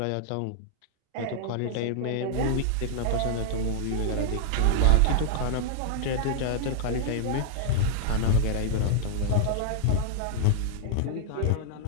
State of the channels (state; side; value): different; both; correlation -0.01